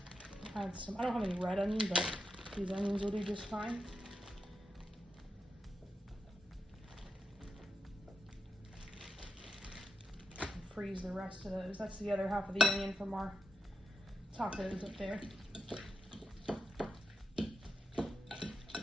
Add some, I don't have any red onion, but these onions will do just fine. Freeze the rest of those. That's the other half of the onion from our tacos up there.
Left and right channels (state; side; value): normal; both; correlation 0.85